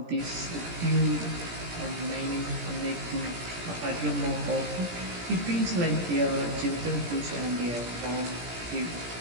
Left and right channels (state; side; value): late; left; 17 ms